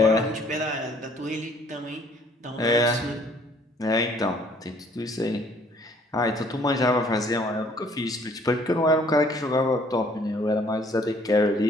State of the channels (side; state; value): both; normal; correlation 0.60